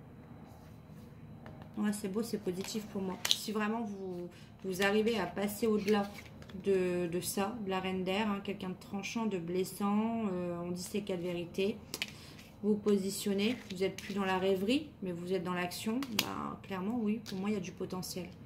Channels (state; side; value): identical; both; correlation 1.00